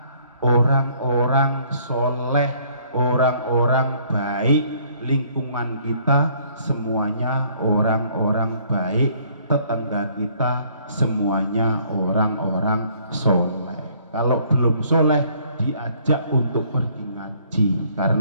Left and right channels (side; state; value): both; inverted; correlation -0.62